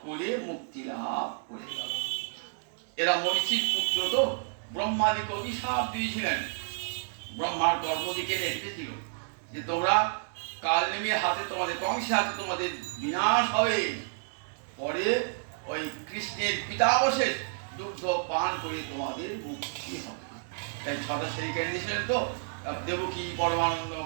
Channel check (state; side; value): silent; left; digital silence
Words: করে মুক্তি লাভ করে গেল। এরা মরিচির পুত্র, তো ব্রহ্মাদিকে অভিশাপ দিয়েছিলেন। ব্রহ্মার কর্মদিকে রেখেছিল যে তোমরা কাল নেমে হাতে, তোমাদের কংসের হাতে তোমাদের বিনাশ হবে। পরে ওই কৃষ্ণের পিতাবশেষ দুগ্ধ পান করে তোমাদের মুক্তি হবে। তাই 6টা ছেলেকে দিয়েছিলেন। তো দেবকী পরমানন্দ